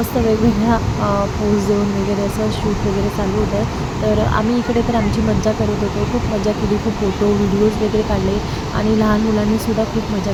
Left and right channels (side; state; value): both; identical; correlation 1.00